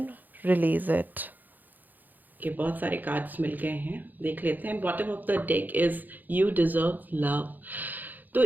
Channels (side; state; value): left; late; 0.085 ms